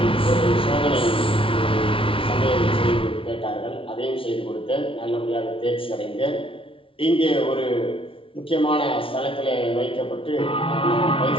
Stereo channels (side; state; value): right; late; 0.25 ms